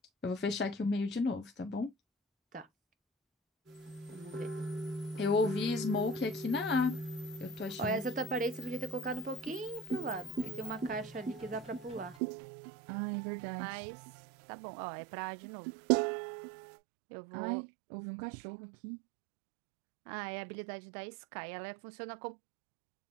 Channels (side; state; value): left; drops out; at 12.2 s